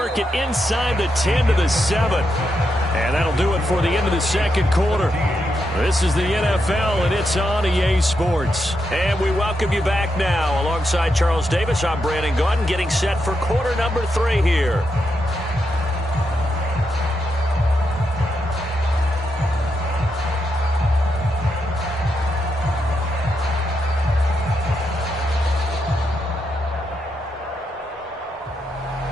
it inside the 10 to the 7. And that'll do it for the end of the second quarter. This is the NFL, and it's on EA Sports. And we welcome you back now. Alongside Charles Davis, I'm Brandon Gaudin, getting set for quarter number 3 here.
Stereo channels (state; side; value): normal; both; correlation 0.83